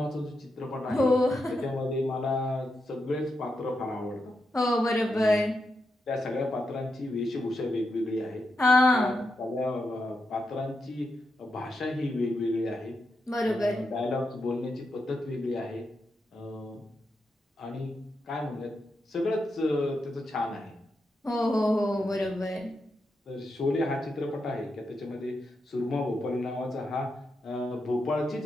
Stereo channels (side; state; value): both; normal; correlation 0.86